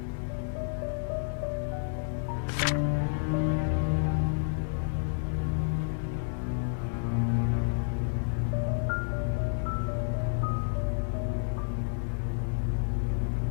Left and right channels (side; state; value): right; silent; digital silence